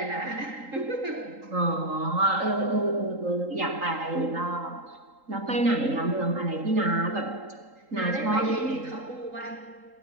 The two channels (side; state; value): left; late; 3.8 ms